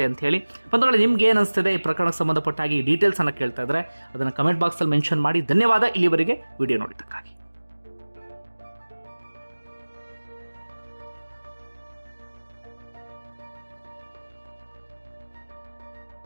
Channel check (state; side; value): inverted; both; correlation -1.00